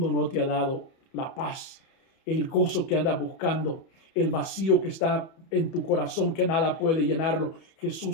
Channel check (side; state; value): right; late; 31 ms